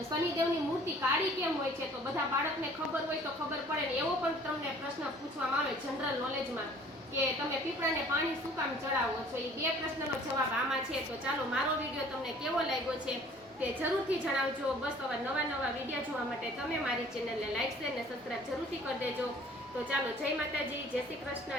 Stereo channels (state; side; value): normal; both; correlation 0.52